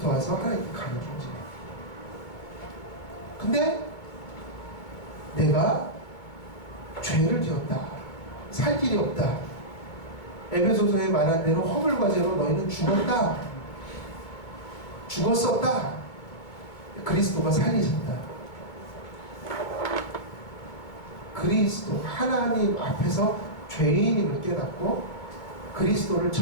와서 하나님께 가는 존재. 근데 내가 죄를 지었다. 살 길이 없다. 에베소서에 말한 대로 허물과 죄로 너희는 죽었다. 죽었었다. 그리스도가 살리셨다. 그리스도 하나님 앞에서 죄인임을 깨닫고 그리스도를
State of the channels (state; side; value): late; right; 2.3 ms